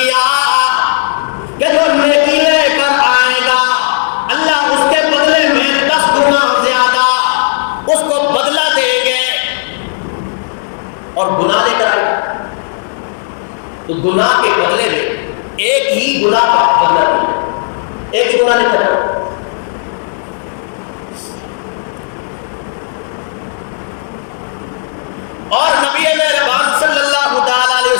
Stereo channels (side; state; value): right; silent; digital silence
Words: کہ جو نیکی لے کر آئے گا اللہ اس کے بدلے میں 10 گنا زیادہ اس کو بدلہ دیں گے، اور گناہ لے کر آئے گا تو گناہ کے بدلے میں ایک ہی گناہ کا بدلہ دیں گے، ایک ہی گناہ لے کر آئے گا۔ اور نبی مہربان صلی اللہ تعالی علیہ